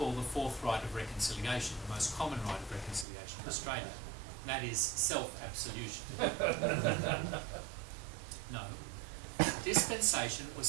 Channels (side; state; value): left; drops out; at 3.1 s